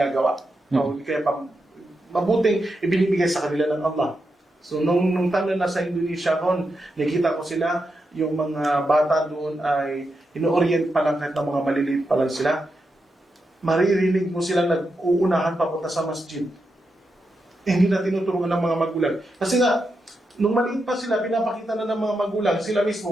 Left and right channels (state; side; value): normal; both; correlation 0.86